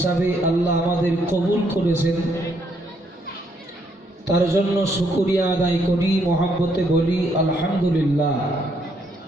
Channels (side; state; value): both; normal; correlation 0.72